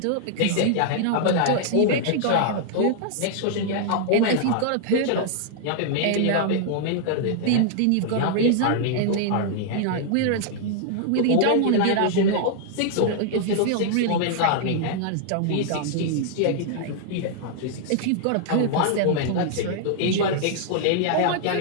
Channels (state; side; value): different; both; correlation -0.01